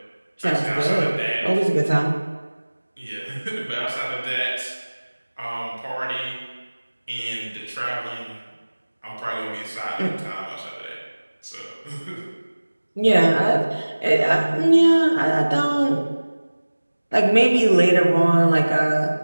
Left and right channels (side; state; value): both; inverted; correlation -1.00